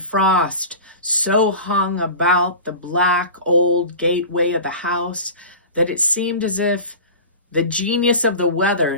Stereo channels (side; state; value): both; inverted; correlation -0.34